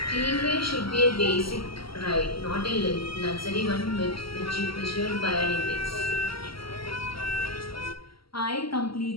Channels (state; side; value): late; right; 0.75 ms